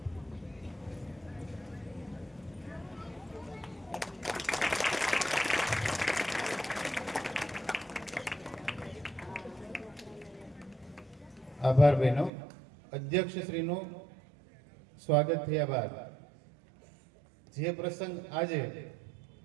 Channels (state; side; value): drops out; left; at 12.3 s